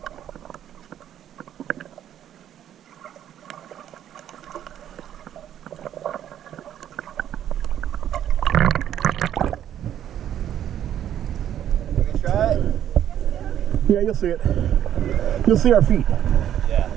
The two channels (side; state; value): left; quieter; 10.6 dB